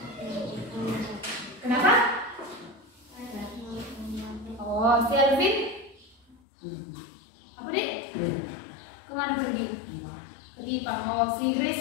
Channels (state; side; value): drops out; right; at 6.4 s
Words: Kenapa? Oh, si Alvin? Apa deh? Kemana pergi? Pergi Pak. Oh, si Grace